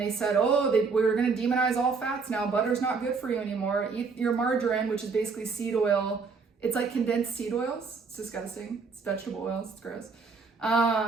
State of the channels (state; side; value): quieter; left; 4.9 dB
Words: said, oh, we were going to demonize all fats now. Butter's not good for you anymore. Eat your margarine, which is basically seed oil. It's like condensed seed oils. It's disgusting. It's vegetable oils. It's gross.